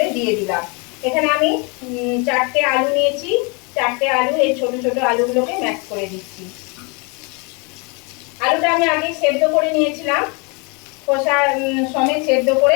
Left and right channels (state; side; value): quieter; right; 31.5 dB